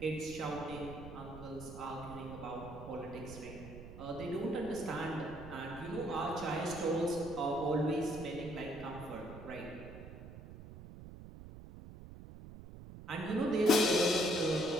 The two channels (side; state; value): right; noise; rumble, 13 dB below the sound